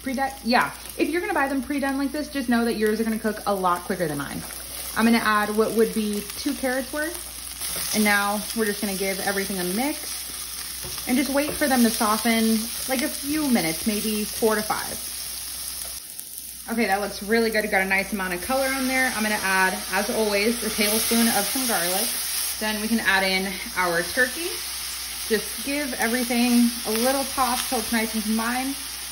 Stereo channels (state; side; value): identical; both; correlation 1.00